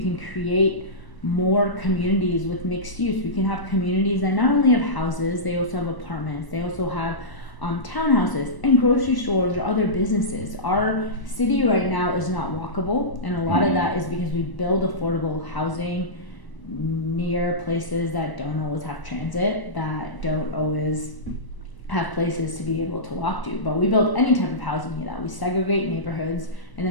create more communities with mixed use. We can have communities that not only have houses, they also have apartments, they also have townhouses and grocery stores or other businesses. Our city right now is not walkable, and a lot of that is because we build affordable housing near places that don't always have transit, that don't always have places to be able to walk to. But we build any type of housing near that. We segregate neighborhoods, and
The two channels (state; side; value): late; right; 1.0 ms